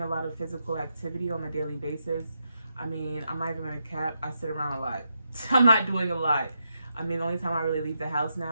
a lot of physical activity on a daily basis. I mean, I'm not even gonna cap, I sit around a lot. I'm not doing a lot. I mean, the only time I really leave the house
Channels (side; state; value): both; inverted; correlation -0.84